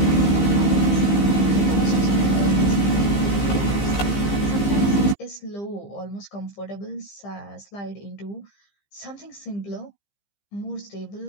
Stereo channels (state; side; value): late; right; 15 ms